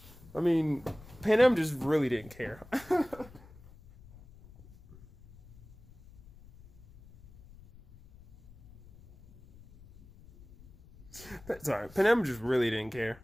I mean, Pan just really didn't care. Sorry, Pan just really didn't care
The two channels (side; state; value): left; noise; rumble, 22 dB below the sound